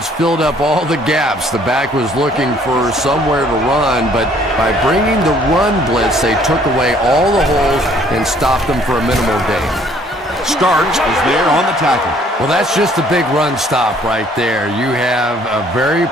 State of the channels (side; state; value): both; normal; correlation 0.60